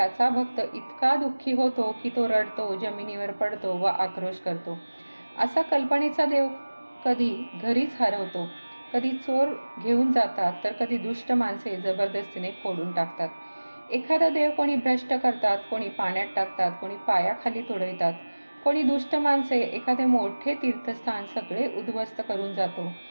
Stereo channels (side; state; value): both; inverted; correlation -1.00